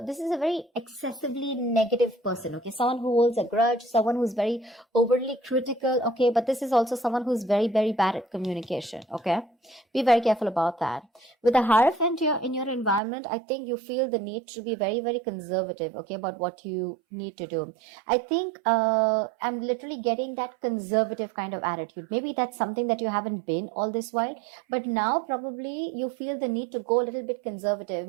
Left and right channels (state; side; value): drops out; left; at 13.0 s